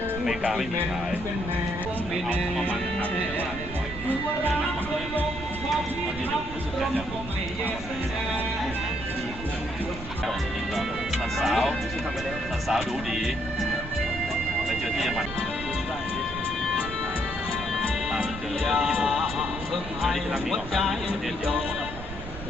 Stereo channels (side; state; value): right; noise; rumble, 11 dB below the sound